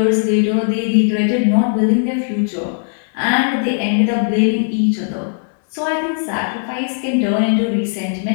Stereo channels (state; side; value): silent; right; digital silence